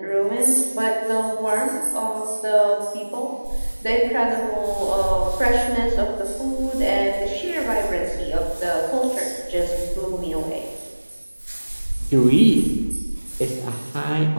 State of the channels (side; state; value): both; inverted; correlation -1.00